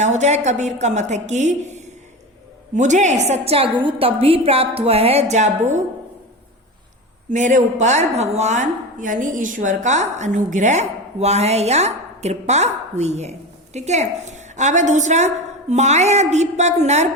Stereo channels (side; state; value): both; normal; correlation 0.25